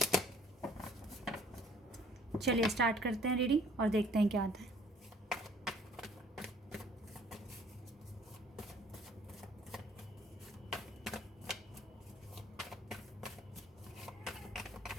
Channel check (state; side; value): normal; both; correlation 0.57